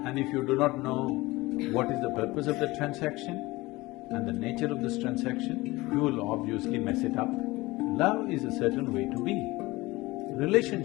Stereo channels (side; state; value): right; quieter; 20.7 dB